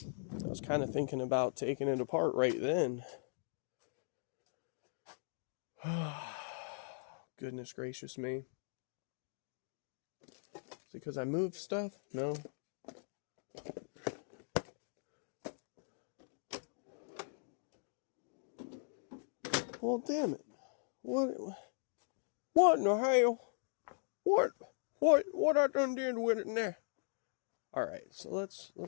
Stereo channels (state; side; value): silent; right; digital silence